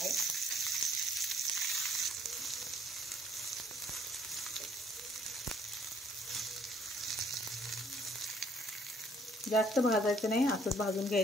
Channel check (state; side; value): normal; both; correlation 0.63